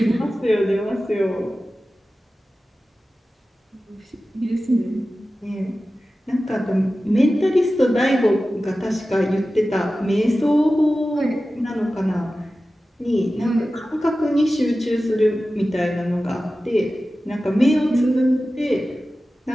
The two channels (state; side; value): normal; both; correlation 0.95